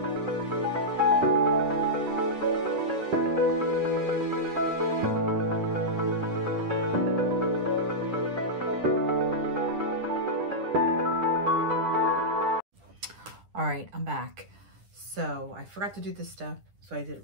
All right, I'm back. So I forgot to do this stuff, so I did it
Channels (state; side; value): late; left; 10 ms